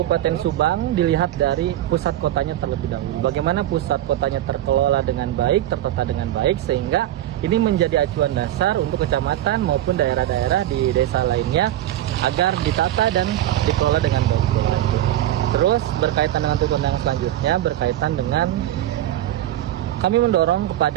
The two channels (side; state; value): left; quieter; 13.2 dB